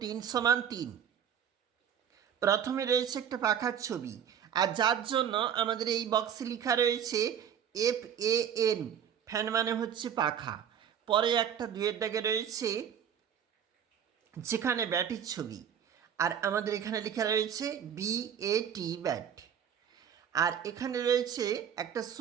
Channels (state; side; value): quieter; left; 8.7 dB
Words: 3 সমান 3। প্রথমে রয়েছে একটা পাখার ছবি, আর যার জন্য আমাদের এই বক্সে লেখা রয়েছে FAN, ফ্যান মানে হচ্ছে পাখা। পরে একটা 2-এর দাগে রয়েছে যেখানে ব্যাটির ছবি, আর আমাদের এখানে লেখা রয়েছে BAT, ব্যাট। আর এখানে রয়েছে একটা